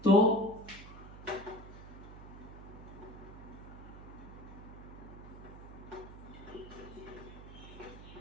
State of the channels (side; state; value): right; noise; hum, 14 dB below the sound